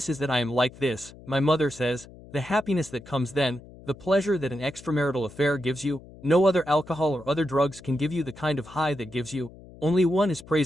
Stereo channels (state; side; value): noise; left; hum, 20 dB below the sound